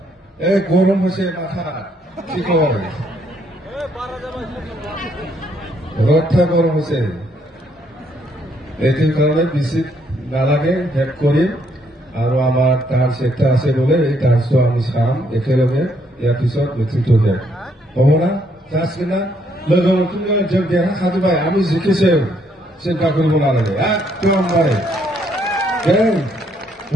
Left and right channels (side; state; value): both; normal; correlation 0.71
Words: गरम হয়েছে মাথা কি কয় রথটা গরম হয়েছে এটির কারণে বেশি নালাগে হেড করি আৰু আমাৰ ডান্স একটা আছে বলে এই ডান্সটো আমি চাম একেলগে ইয়াৰ পিছত নেতৃত্ব দিয়াম হ'ব না যাচ্ছে না लोगो जों देरहाखाजोब्बाय আমি জিকিছে চিন্তা কৰিব নালাগে একদম মানে